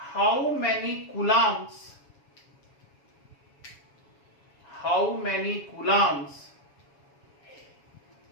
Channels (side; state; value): right; late; 7.2 ms